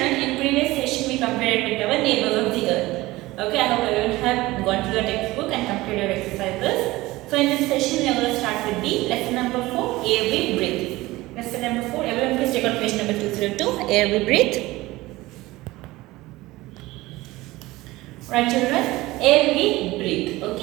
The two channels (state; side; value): quieter; left; 19.1 dB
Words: in previous session we compared with our neighbors of the earth. Okay, I hope everyone have gone through your textbook and completed your exercises. So in this session we are going to start with the lesson number 4, air we breathe. Lesson number 4, everyone please take out page number 202, air we breathe. Right children, air we breathe.